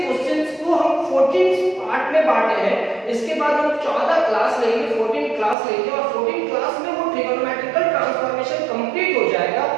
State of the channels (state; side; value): drops out; left; at 5.6 s